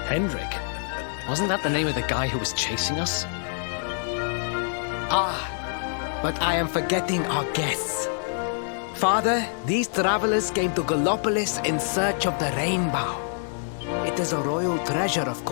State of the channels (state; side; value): silent; right; 61 dB below the other